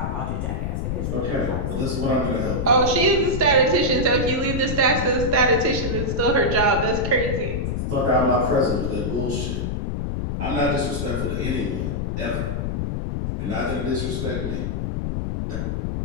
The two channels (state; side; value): noise; left; rumble, 1 dB below the sound